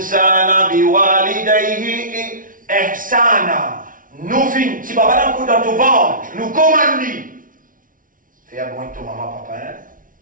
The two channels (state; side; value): late; left; 0.39 ms